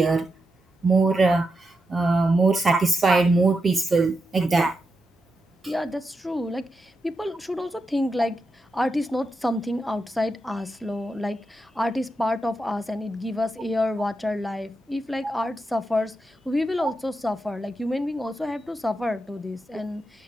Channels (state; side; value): normal; both; correlation 0.86